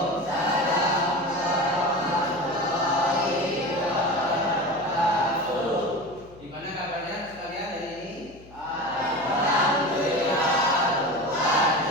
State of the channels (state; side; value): noise; left; hum, 23 dB below the sound